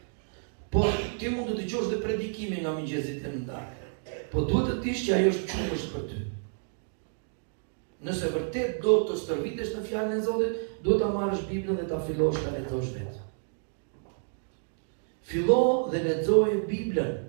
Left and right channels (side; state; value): left; silent; digital silence